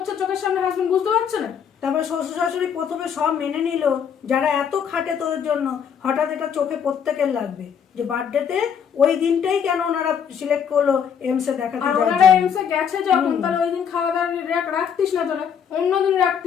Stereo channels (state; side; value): quieter; right; 7.7 dB